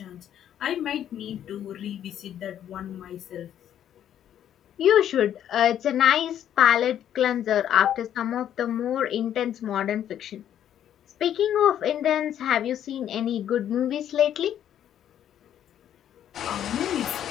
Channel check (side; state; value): right; quieter; 10.4 dB